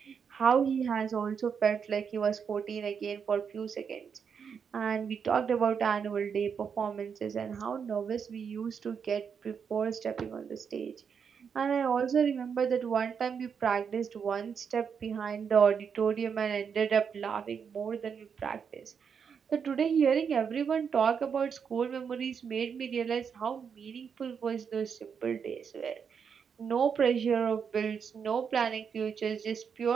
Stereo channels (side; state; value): left; quieter; 6.7 dB